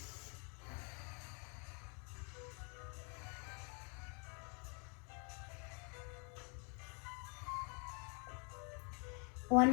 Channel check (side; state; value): right; quieter; 36.6 dB